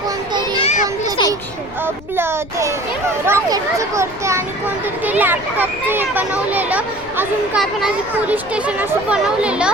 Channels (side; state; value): left; noise; rumble, 17 dB below the sound